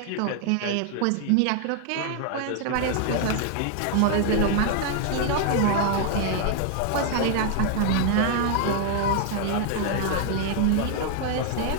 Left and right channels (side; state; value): both; different; correlation 0.00